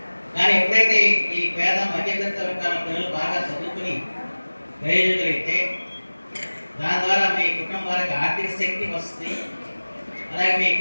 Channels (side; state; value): both; inverted; correlation -1.00